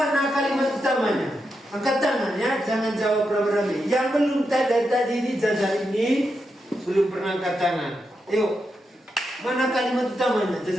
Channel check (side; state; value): both; normal; correlation 0.86